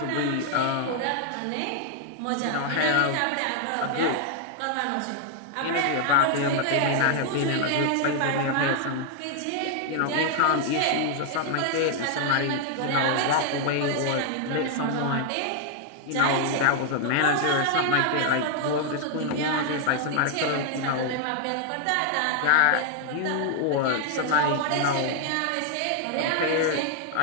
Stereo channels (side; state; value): both; different; correlation 0.00